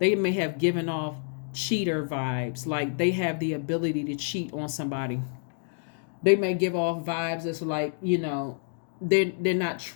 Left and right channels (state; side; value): silent; right; 58 dB below the other